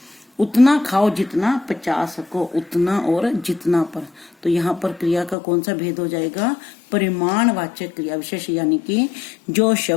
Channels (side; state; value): right; drops out; at 5.4 s